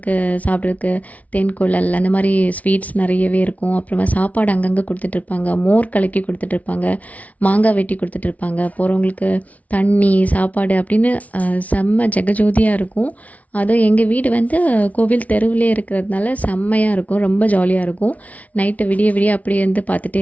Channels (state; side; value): late; right; 0.069 ms